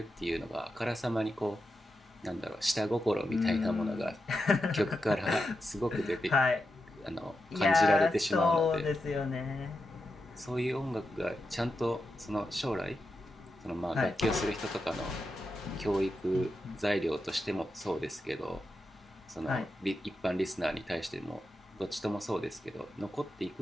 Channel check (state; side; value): normal; both; correlation 0.88